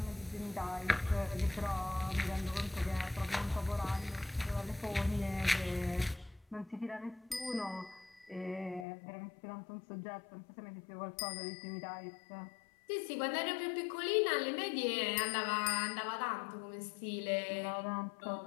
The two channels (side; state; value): right; drops out; at 8.8 s